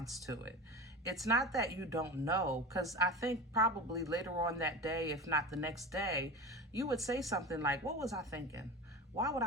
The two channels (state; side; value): normal; both; correlation 0.28